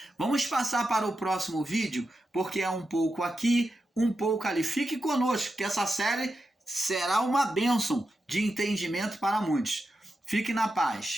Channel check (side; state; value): both; normal; correlation 0.89